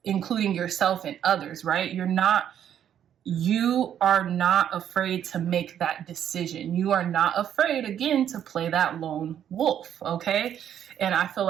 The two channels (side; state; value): left; quieter; 9.8 dB